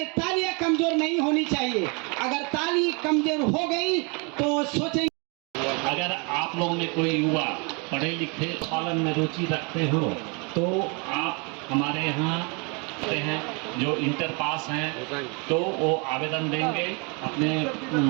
तालियां कमजोर नहीं होनी चाहिए। अगर ताली कमजोर हो गई तो सोचेंगे। अगर आप लोगों में कोई युवा पढ़े लिखे पालन में रुचि रखते हो तो आप हमारे यहाँ आते हैं, जो इंटर पास हैं तो वो आवेदन देंगे अपने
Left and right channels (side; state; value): left; quieter; 32.5 dB